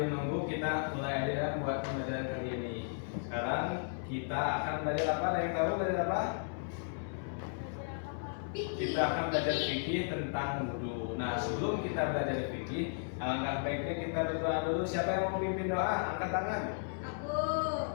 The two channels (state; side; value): silent; right; digital silence